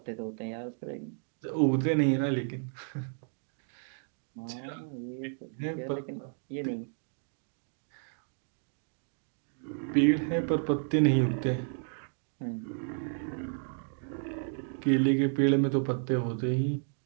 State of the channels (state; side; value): silent; left; 56 dB below the other